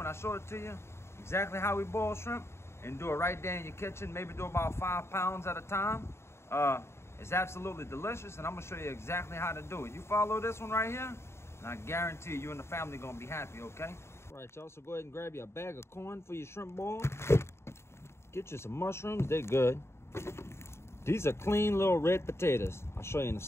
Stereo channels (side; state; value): right; late; 0.13 ms